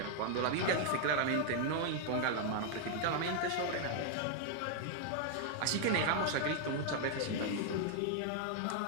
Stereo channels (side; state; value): both; different; correlation 0.00